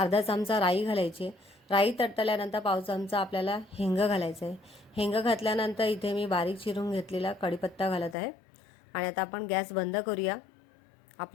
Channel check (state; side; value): drops out; right; at 8.2 s